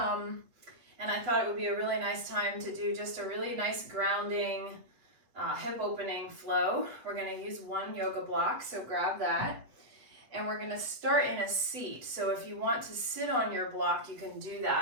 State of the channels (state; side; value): late; left; 8.1 ms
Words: I thought it would be a really nice time to do just a really nice grounding hip opening flow. We're going to use one yoga block, so grab that. And we're going to start in a seat. So if you want to sit on your block, you can do